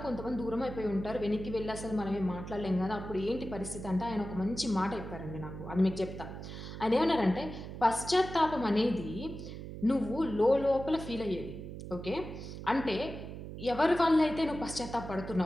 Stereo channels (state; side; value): noise; right; hum, 9 dB below the sound